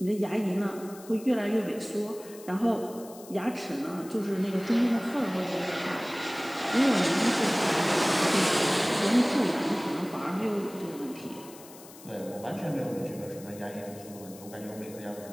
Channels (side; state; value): left; noise; hiss, 19 dB below the sound